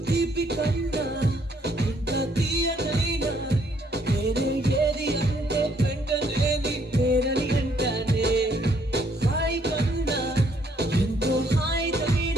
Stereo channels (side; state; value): both; normal; correlation 0.68